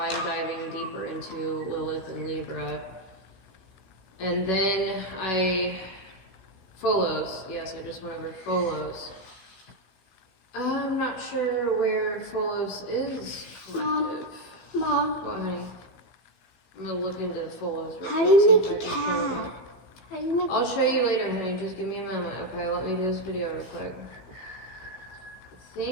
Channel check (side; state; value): right; late; 16 ms